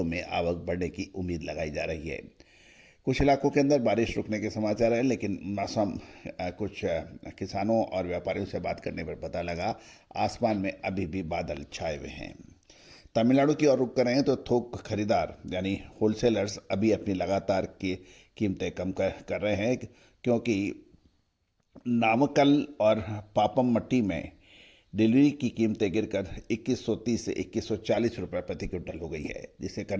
में आवक बढ़ने की उम्मीद लगाई जा रही है। कुछ इलाकों के अंदर बारिश रुकने के समाचार हैं, लेकिन मौसम कुछ किसानों और व्यापारियों से बात करने पर पता लगा आसमान में अभी भी बादल छाए हुए हैं। तमिलनाडु की ओर रुख करें तो थोक खरीदार यानी होलसेलर्स अभी अपनी लगातार की कीमतें कम कर रहे हैं, क्योंकि नामक्कल और पापमट्टी में डिलीवरी की कीमतें गिरकर 2130 से 2140 रुपये प्रति क्विंटल हो गई है, जिससे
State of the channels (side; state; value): both; identical; correlation 1.00